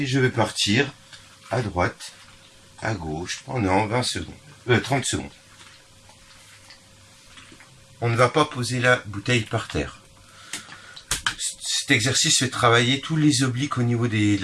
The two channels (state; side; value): identical; both; correlation 1.00